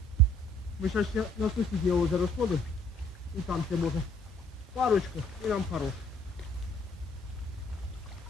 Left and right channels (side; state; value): both; normal; correlation 0.61